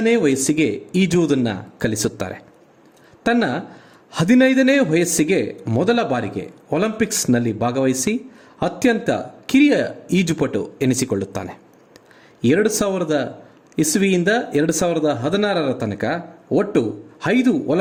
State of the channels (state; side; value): identical; both; correlation 1.00